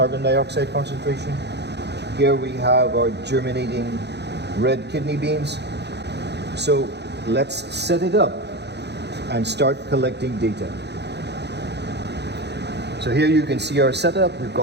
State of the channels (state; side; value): late; left; 0.49 ms